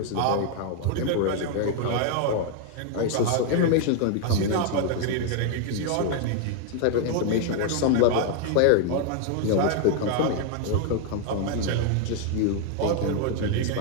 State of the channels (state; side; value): different; both; correlation 0.00